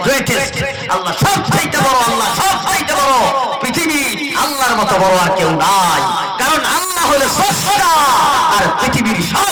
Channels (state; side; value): identical; both; correlation 1.00